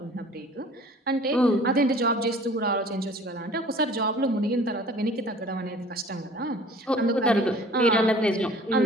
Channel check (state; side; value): normal; both; correlation 0.48